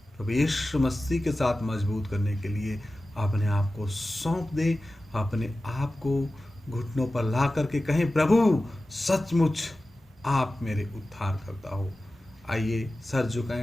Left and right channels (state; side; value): normal; both; correlation 0.95